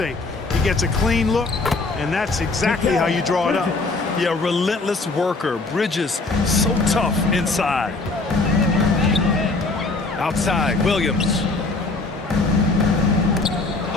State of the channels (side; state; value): right; quieter; 3.5 dB